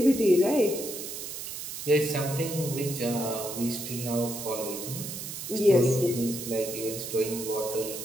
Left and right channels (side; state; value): right; noise; hiss, 7 dB below the sound